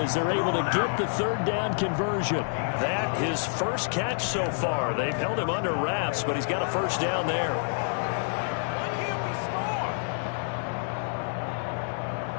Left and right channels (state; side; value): silent; right; digital silence